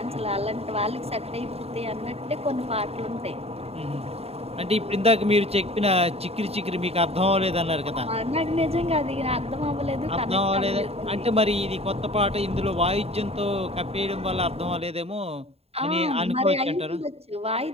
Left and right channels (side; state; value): left; late; 0.29 ms